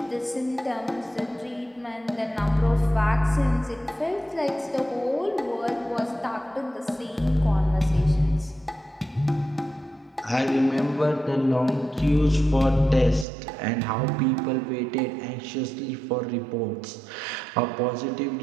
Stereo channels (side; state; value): left; drops out; at 13.2 s